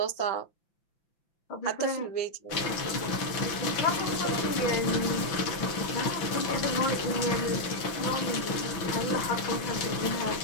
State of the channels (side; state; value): right; late; 6.1 ms